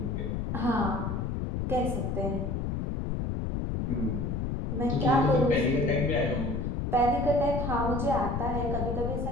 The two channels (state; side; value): noise; left; rumble, 1 dB below the sound